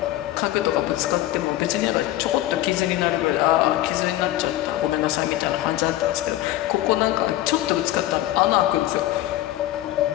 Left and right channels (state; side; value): quieter; right; 14.9 dB